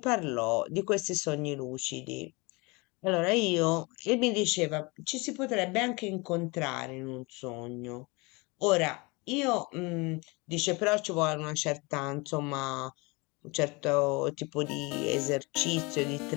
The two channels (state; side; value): quieter; right; 26.7 dB